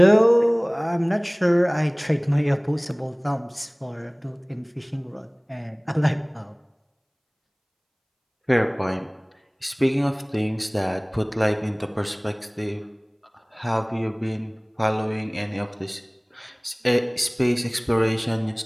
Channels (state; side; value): identical; both; correlation 1.00